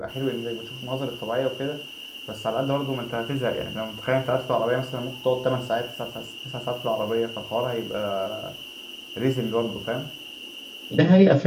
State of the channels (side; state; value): both; identical; correlation 1.00